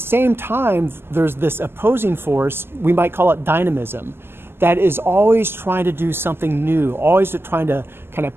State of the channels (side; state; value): left; late; 0.11 ms